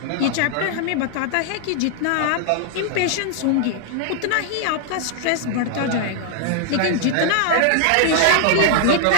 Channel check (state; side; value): different; both; correlation -0.01